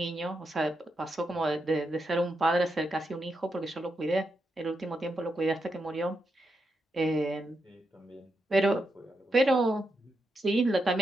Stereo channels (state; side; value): normal; both; correlation 0.84